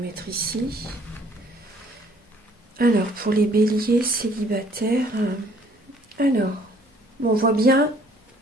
ici. Alors, pour les béliers célibataires, on voit bien,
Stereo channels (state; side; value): normal; both; correlation 0.59